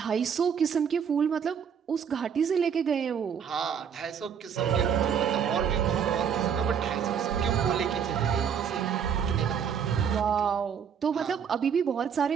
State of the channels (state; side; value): quieter; left; 7.5 dB